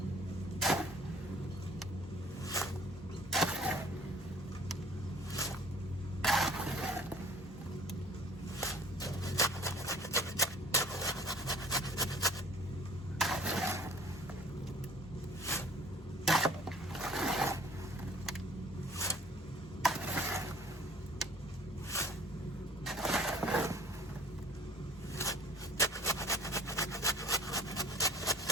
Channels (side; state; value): both; normal; correlation 0.50